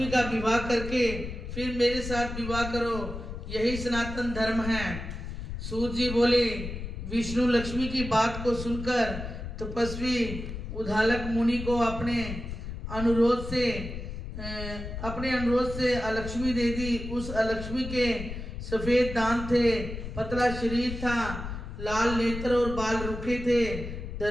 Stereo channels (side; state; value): left; noise; rumble, 7 dB below the sound